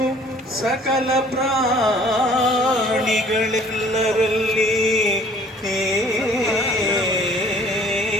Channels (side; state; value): both; normal; correlation 0.55